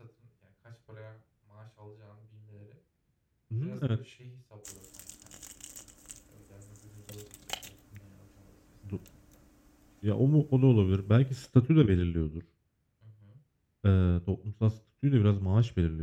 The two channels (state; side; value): identical; both; correlation 1.00